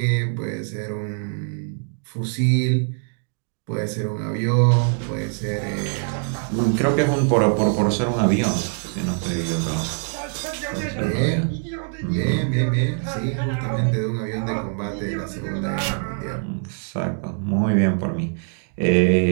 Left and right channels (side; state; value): left; silent; 56 dB below the other